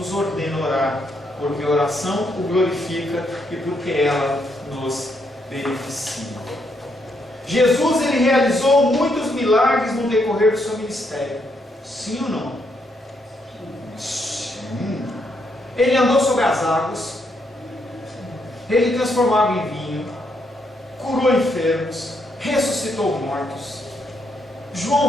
ordena orar, porque a oração o glorifica e porque ela nos beneficia. Jesus ele realizou muitos milagres no decorrer do seu ministério. Sim ou não? Sim. Ele andou sobre as águas. Ele transformava em vinho. Curou enfermos. Ressuscitou mortos.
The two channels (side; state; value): both; normal; correlation 0.76